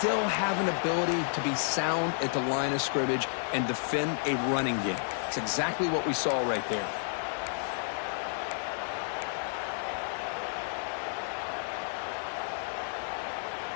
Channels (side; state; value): right; silent; digital silence